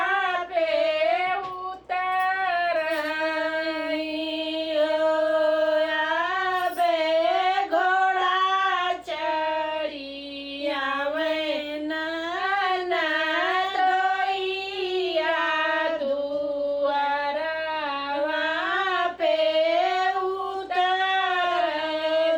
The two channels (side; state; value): both; identical; correlation 1.00